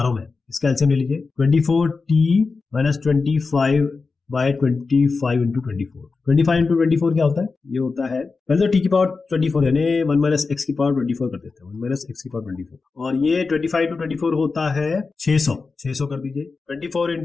हूँ मैं, इसका एलसीएम ले लीजिए 24t-25/25 इंटू 24। 25 इंटू 24 क्या होता है, ये होता है पहले तो t⁻24 यानी 1 - x⁻24 कर देते हैं, 1 - x⁻24 और ये 25 इंटू 24 होता है 600 कर दीजिए। 24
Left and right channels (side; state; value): right; quieter; 4.3 dB